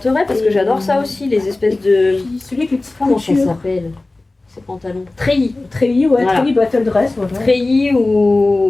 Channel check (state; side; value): quieter; right; 3.0 dB